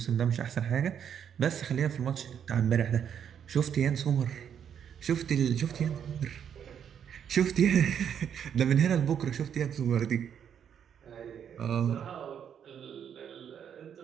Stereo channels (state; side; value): quieter; left; 8.5 dB